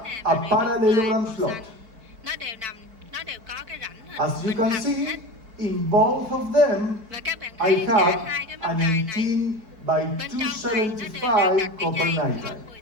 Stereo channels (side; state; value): left; late; 4.5 ms